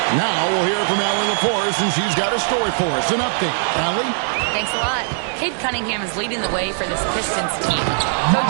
Now we'll hear from Allie LaForce, and she's got a story for us. An update. Allie? Thanks a lot. Cade Cunningham is leading the way for this Pistons team. Coach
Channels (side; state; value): left; silent; digital silence